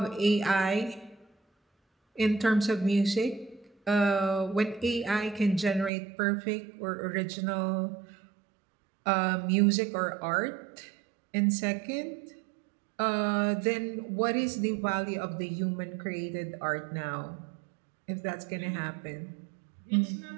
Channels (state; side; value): drops out; left; at 5.9 s